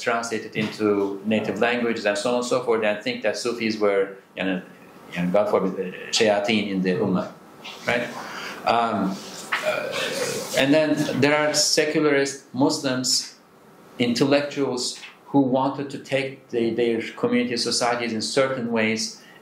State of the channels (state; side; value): identical; both; correlation 1.00